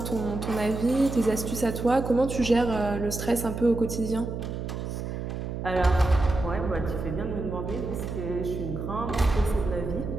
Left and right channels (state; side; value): noise; right; hum, 5 dB below the sound